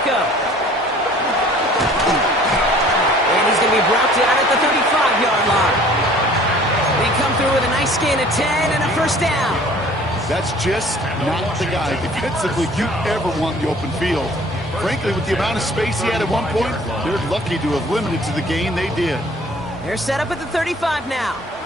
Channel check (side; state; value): both; normal; correlation 0.51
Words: And he's going to be brought down at the 35-yard line. They come through with a nice gain of 10 and a 1st down. That's just not the guy defensively you ever want in the open field. frankly, with the amount of space he had at one point, they're lucky to have limited to the gain they did. They're set up at the 35 now.